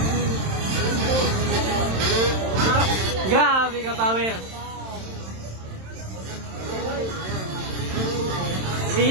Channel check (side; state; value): left; late; 27 ms